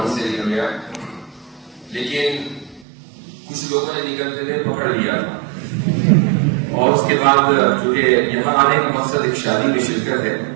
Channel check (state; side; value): drops out; left; at 2.9 s